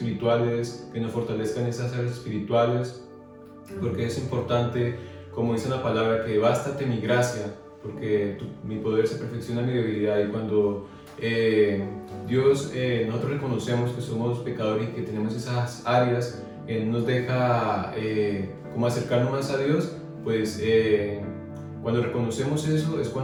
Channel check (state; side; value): identical; both; correlation 1.00